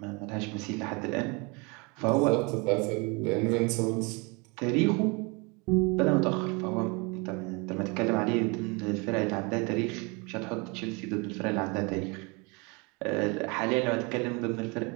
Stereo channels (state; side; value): quieter; left; 29.4 dB